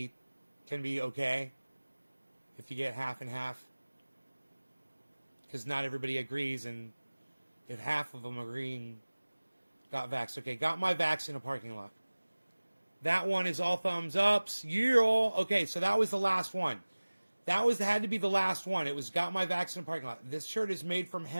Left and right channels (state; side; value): inverted; both; correlation -1.00